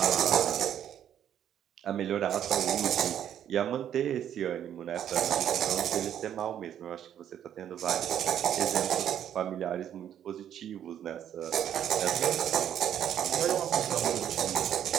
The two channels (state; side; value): quieter; left; 10.0 dB